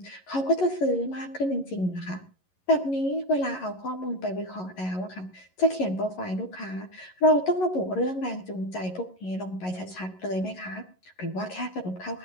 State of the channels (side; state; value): right; late; 11 ms